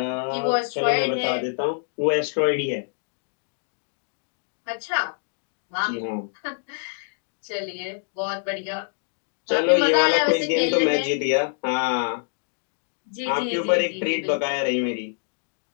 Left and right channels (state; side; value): silent; right; digital silence